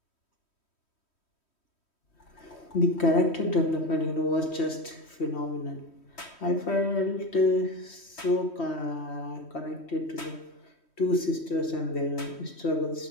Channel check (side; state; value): right; late; 3.1 ms